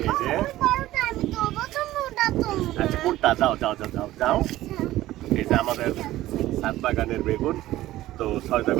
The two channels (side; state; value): left; quieter; 15.5 dB